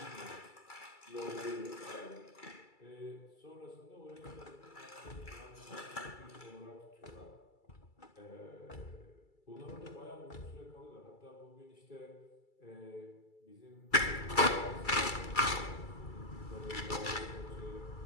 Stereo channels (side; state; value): right; late; 2.3 ms